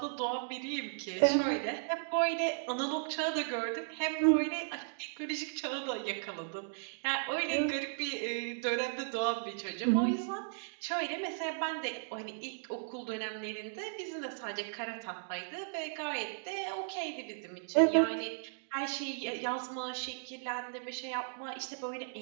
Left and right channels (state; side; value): silent; left; digital silence